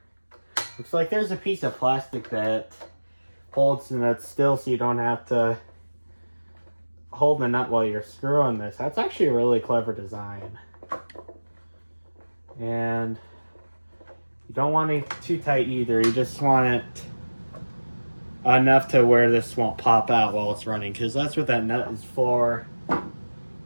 Looks like there's a piece of plastic that holds the nut still, so you don't have to hold the nut while you're screwing this. That's actually a really clever design. And you don't want it too tight either. You just want it enough to where this won't pop out while it's running, because that's what that nut is for.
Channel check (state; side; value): inverted; both; correlation -1.00